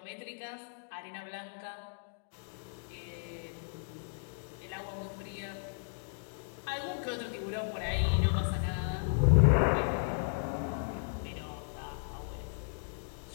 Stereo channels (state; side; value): silent; right; digital silence